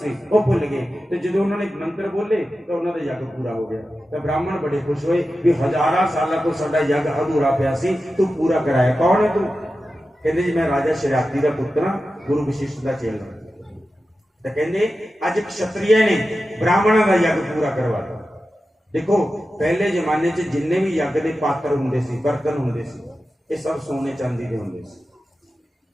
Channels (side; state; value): both; normal; correlation 0.92